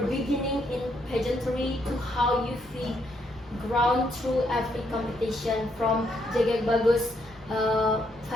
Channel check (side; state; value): both; normal; correlation 0.75